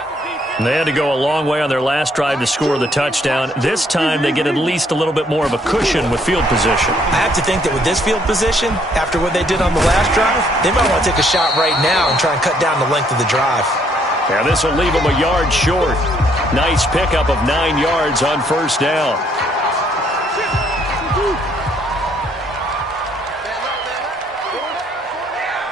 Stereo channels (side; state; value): both; normal; correlation 0.67